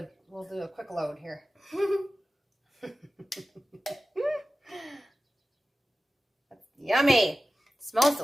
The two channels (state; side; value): normal; both; correlation 0.95